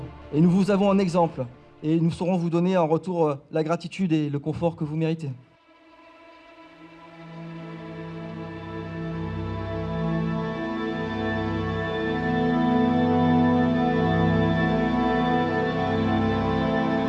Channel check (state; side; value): identical; both; correlation 1.00